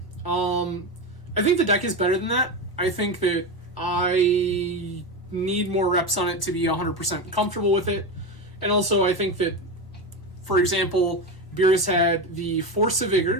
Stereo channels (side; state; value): right; late; 1.1 ms